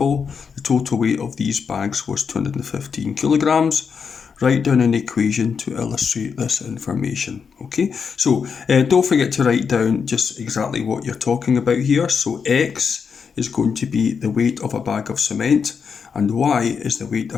The total weight of these bags was 215 kilograms. Write down an equation to illustrate this information. Okay, so don't forget to write down just exactly what you're talking about here. So X is going to be the weight of a bag of cement and Y is the weight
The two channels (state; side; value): quieter; right; 6.1 dB